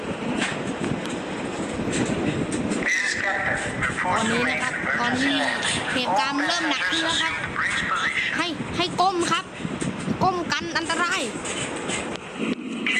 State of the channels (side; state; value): both; identical; correlation 1.00